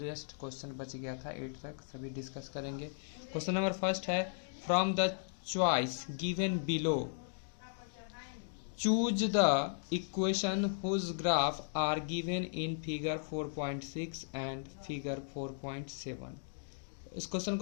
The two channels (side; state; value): right; silent; digital silence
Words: रेस्ट क्वेश्चन बच गया था 8 तक सभी डिस्कस करेंगे। क्वेश्चन नंबर फर्स्ट है, from the choice given below choose the equation whose graph are given in figure 4.6 and figure 4.7। इस क्वेश्चन